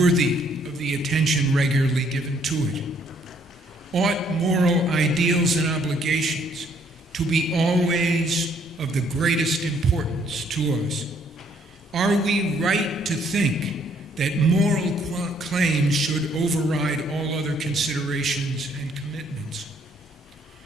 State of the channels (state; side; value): normal; both; correlation 0.66